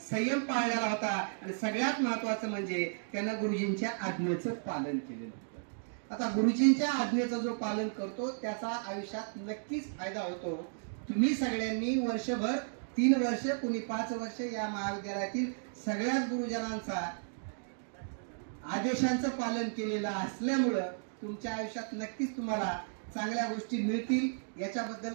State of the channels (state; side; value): silent; left; digital silence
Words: संयम पाळलेला होता आणि सगळ्यात महत्वाचं म्हणजे त्यांना गुरुजींच्या आज्ञेचं पालन केलेलं होतं. आता गुरुजींच्या आज्ञेचं जो पालन करतो त्याचा आयुष्यात नक्कीच फायदा होतो. तुम्ही सगळ्यांनी वर्षभर 3 वर्ष, कुणी 5 वर्ष या महाविद्यालयातील सगळ्याच गुरुजनांचा आदेशांचं पालन केलेलं असल्यामुळं तुमच्या आयुष्यात नक्कीच तुम्हाला चांगल्या गोष्टी मिळतील. याच्याबद्दल